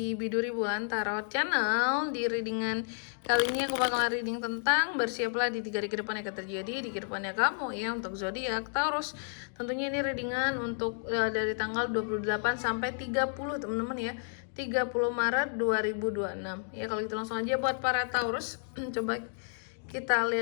Biduri Bulan Tarot Channel. Di readingan kali ini aku bakalan reading tentang bersiaplah di 3 hari ke depan akan terjadi di kehidupannya kamu ya untuk zodiak Taurus. Tentunya ini readingan untuk dari tanggal 28 sampai 30 teman-teman ya. 30 Maret 2026. Ya kalau gitu langsung aja buat para Taurus. Coba kita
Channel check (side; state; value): right; silent; digital silence